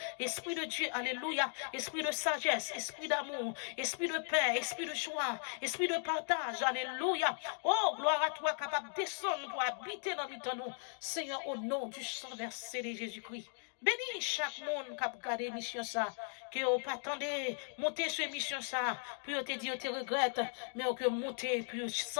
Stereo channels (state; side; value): silent; right; 53 dB below the other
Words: esprit de Dieu. Alléluia, esprit de sagesse, esprit d'amour, esprit de paix, esprit de joie, esprit de partage. Alléluia. Oh, gloire à toi, capable de descendre pour habiter dans nous. Seigneur, au nom du sang versé de Jésus-Christ. Bénis chaque monde qui a regardé l'émission ça, que vous pas attendez monter sur l'émission ça, puis vous te dit, vous te regrette, mais que monter, puis vous